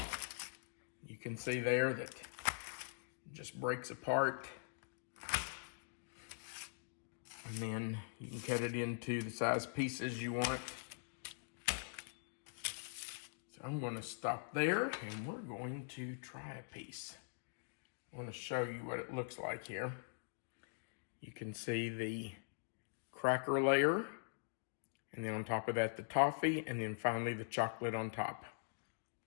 You can see there that it just breaks apart. And then you can cut it into the size pieces you want. So I'm going to stop there and we're going to try a piece. I want to show you what it looks like here. You can see the cracker layer, and then on top of that the toffee, and then finally the chocolate on top.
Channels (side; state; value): right; silent; digital silence